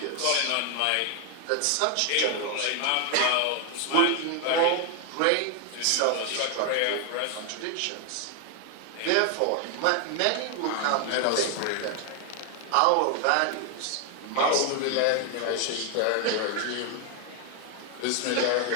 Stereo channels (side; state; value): both; different; correlation 0.00